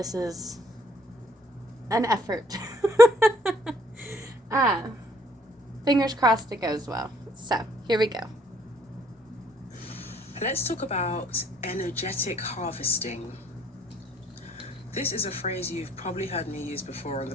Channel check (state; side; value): normal; both; correlation 0.64